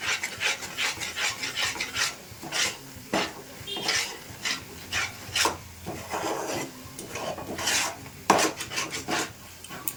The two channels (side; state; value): both; identical; correlation 1.00